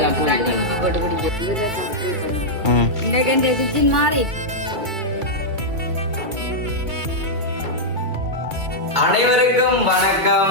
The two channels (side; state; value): left; late; 2.3 ms